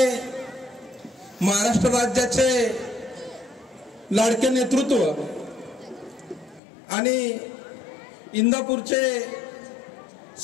महाराष्ट्र राज्याचे लाडके नेतृत्व आणि इंदापूरचे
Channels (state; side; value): drops out; right; at 6.6 s